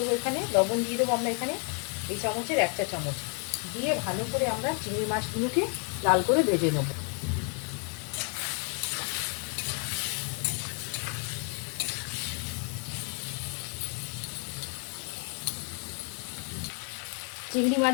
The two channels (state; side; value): quieter; right; 39.2 dB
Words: এখানে লবণ দিয়ে দেবো আমরা এখানে এই চামচের 1 চা চামচ দিয়ে ভালো করে আমরা চিংড়ি মাছগুলোকে লাল করে ভেজে নেব। চিংড়ি